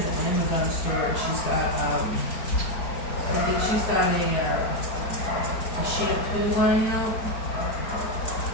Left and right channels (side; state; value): right; late; 4.4 ms